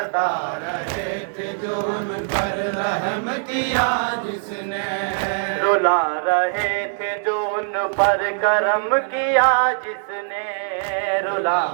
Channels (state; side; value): silent; left; digital silence